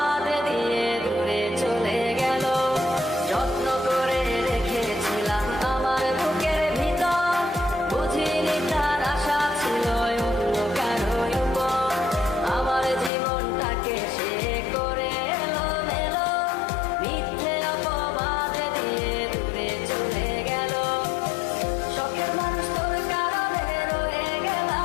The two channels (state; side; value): drops out; right; at 13.1 s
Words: দিয়ে দূরে চলে গেল। যত্ন করে রেখেছিলাম আমার বুকের ভিতর, বুঝিনি তার আশা ছিল অন্য কারো উপর। আমার জীবনটাকে সে করে এলোমেলো, মিথ্যে অপবাদ দিয়ে দূরে চলে গেল। শখের মানুষ তোর কারণে রয়ে